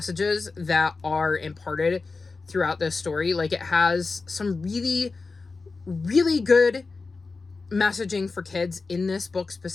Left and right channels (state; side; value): quieter; right; 4.1 dB